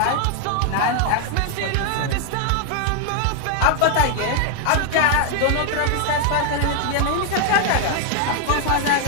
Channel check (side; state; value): both; different; correlation 0.00